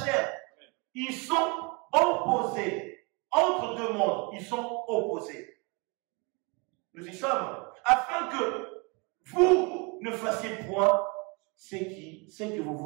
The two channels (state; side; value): quieter; left; 30.0 dB